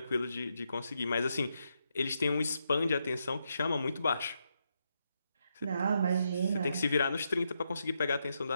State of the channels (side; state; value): both; inverted; correlation -0.82